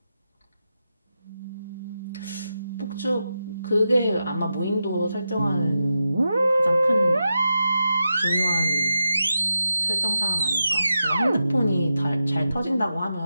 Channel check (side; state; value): both; inverted; correlation -0.89